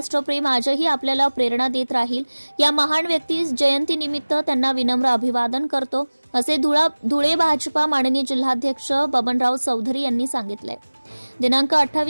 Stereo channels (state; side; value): inverted; both; correlation -1.00